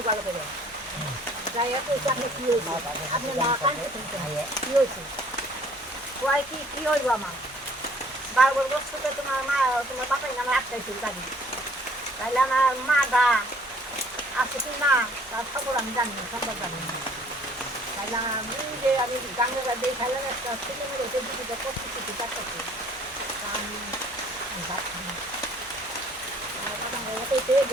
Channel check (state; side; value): normal; both; correlation 0.57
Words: ভালো করে যাই হোক আপনি কি হয়েছে আপনি না কানতে শুনতে কি হয়েছে কয় কি হইব আমার 12 বছর থেকে তোমার মা তোমার বাপাই নামে আটকাইছিল গাড়ি তাইলে আমার মা দা আছে কি না তার খবর আমি জানি না সম্ভব জানি না তাইলে আমি যে আমি গাঙ্গা দিয়ে খাইলাম একটা ছেলে মেয়ে ওকে দিদিটা করতে কিছু চারটাছে আমি ভাত খাই